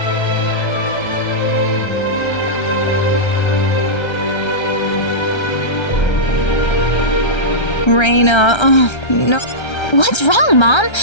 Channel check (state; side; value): late; right; 1.3 ms